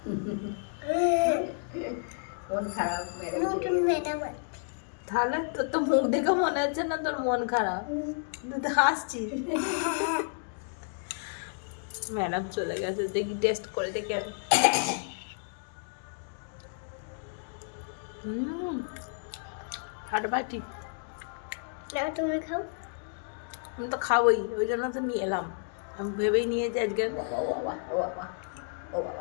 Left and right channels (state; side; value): silent; right; digital silence